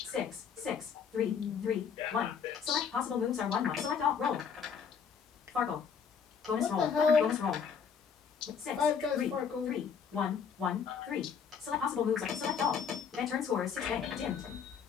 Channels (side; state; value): right; quieter; 6.7 dB